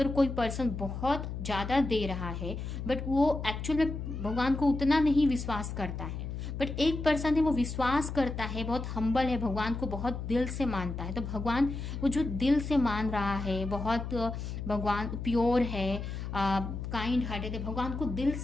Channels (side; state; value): left; noise; hum, 6 dB below the sound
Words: कोई पर्सन बहुत ज़्यादा दे रहा है बट वो एक्चुअल में भगवान को उतना नहीं विश्वास करता है, बट एक पर्सन है वो विश्वास करता है, बहुत हम्बल है, भगवान को बहुत दिल से मानता है, तो भगवान वो जो दिल से मान रहा है, बहुत भगवान प्योर है, काइंड हार्टेड है, भगवान को दिल